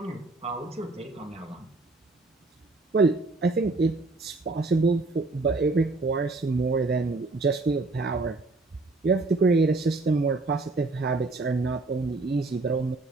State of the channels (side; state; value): left; quieter; 3.3 dB